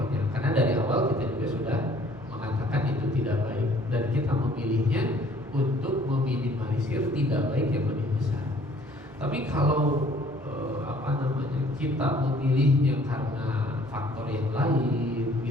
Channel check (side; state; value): both; normal; correlation 0.57